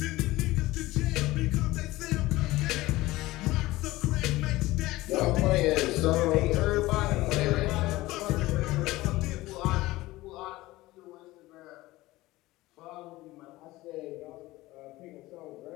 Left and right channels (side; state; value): right; quieter; 18.5 dB